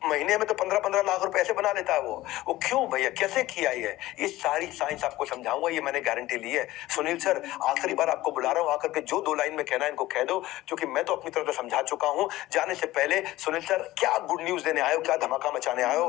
महीने में तो 15-15 लाख रुपए ऐसे बना लेता है वो क्यों भैया, कैसे किया ये सारी साइंस आपको समझाऊंगा, ये मैंने गारंटी ली है। सुनील सर आखिरी बार आपको बुला रहा हूँ, आकर के जो 2 लाइन में कहना है इनको कह दो, क्योंकि मैं तो अपनी तरफ से समझा चुका हूँ। जाने से पहले सुनील सर क्या गुड न्यूज देने आए हो, क्या धमाका मचाने आए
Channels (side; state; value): right; quieter; 16.9 dB